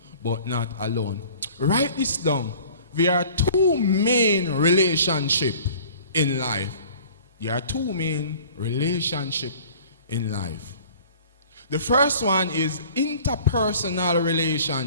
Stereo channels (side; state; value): both; inverted; correlation -0.48